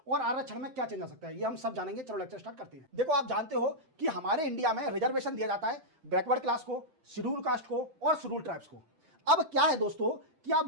और आरक्षण में क्या चेंज आ सकता है, ये हम सब जानेंगे। चलो लेक्चर स्टार्ट करते हैं। देखो, आप जानते हो कि हमारे इंडिया में रिजर्वेशन दिया जाता है बैकवर्ड क्लास को, शेड्यूल कास्ट को और शेड्यूल ट्राइब्स को। अब क्या है दोस्तों कि आप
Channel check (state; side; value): late; left; 7.7 ms